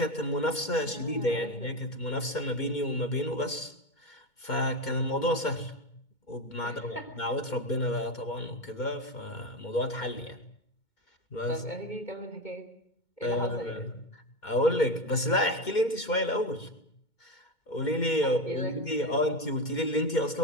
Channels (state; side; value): late; right; 2.2 ms